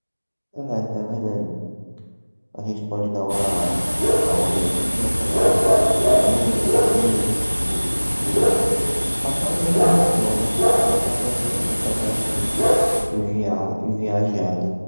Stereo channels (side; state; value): both; inverted; correlation -1.00